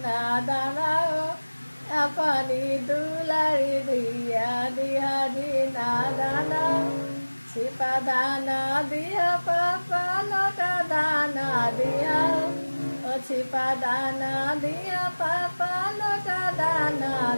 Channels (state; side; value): inverted; both; correlation -1.00